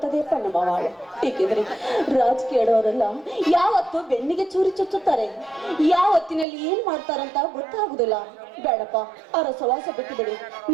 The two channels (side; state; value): left; drops out; at 6.5 s